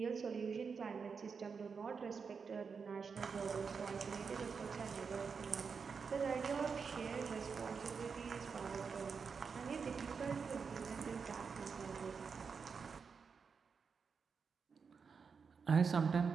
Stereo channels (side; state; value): left; quieter; 5.6 dB